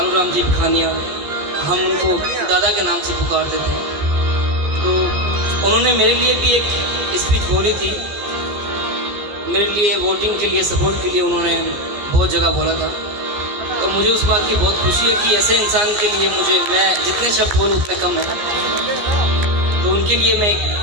जी भिखानिया, हम उनको दादा के नाम से पुकारते थे, तो उन्होंने मेरे लिए भी एक स्पीच बोली थी। मेरे लिए वोटिंग के लिए, सपोर्ट के लिए उन्होंने बहुत जगह बोला था। तो मुझे उस बात की बहुत खुशी है कि ऐसे इंसान के लिए मैं जितने शब्द बोलूँ उतने कम है। तो उनके लिए मैं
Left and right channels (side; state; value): left; late; 14 ms